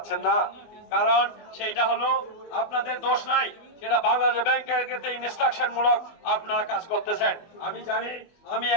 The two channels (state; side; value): late; right; 24 ms